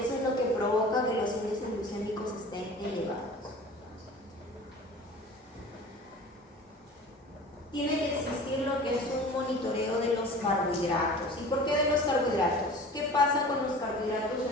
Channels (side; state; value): both; normal; correlation 0.41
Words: eso es lo que provoca que los índices glucémicos estén elevados. Tiene que existir lo que es un monitoreo de los carbohidratos. ¿Y por qué de los carbohidratos? ¿Qué pasa con los carbohidratos